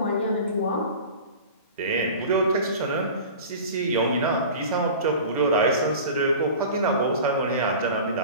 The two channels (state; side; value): inverted; both; correlation -0.37